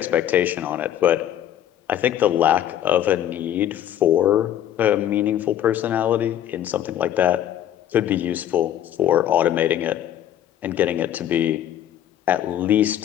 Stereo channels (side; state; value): right; quieter; 11.2 dB